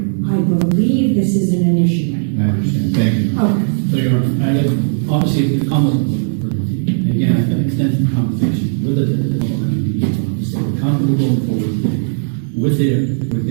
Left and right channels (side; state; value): left; silent; digital silence